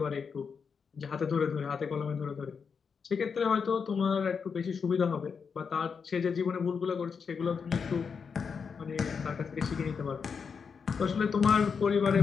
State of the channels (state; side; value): quieter; right; 6.0 dB